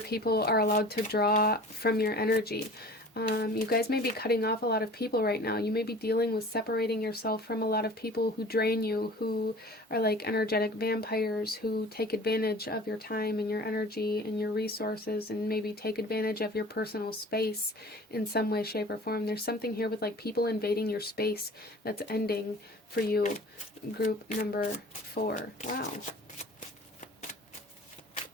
are allowed to draw from your energy. You guys may be cutting off a lot of people right now. You may be dealing with separating yourself from a lot of people who drain you, who are like energetic vampires, who take advantage of your time and your energy and your resources, and maybe take advantage of your personal space in some way, shape, or form. There's something here with like people invading your space that's ending for you. Group number 4. Wow.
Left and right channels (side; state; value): both; normal; correlation 0.43